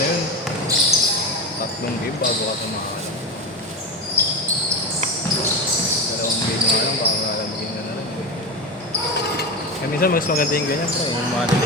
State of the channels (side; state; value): both; normal; correlation 0.21